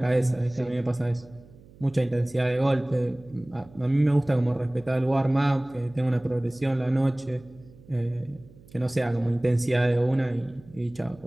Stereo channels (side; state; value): right; noise; hum, 24 dB below the sound